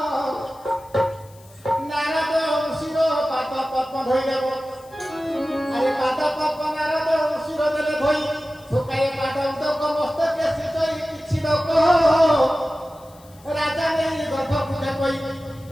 ନାରଦ ଋଷିର ପାଦ ପଦ୍ମ ଧୋଇଦେବ ଆରେ ପାଦ ପଦ୍ମ ନାରଦ ଋଷିର ଦେଲେ ଧୋଇ ଶୁକାଏ ପାଦ ଉଦକ ମସ୍ତକେ ସିଚଇ କିଛି ଲୋକ ରାଜା ନେଇ ଗର୍ଭ ପୂଜା କହି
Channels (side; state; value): left; noise; hiss, 27 dB below the sound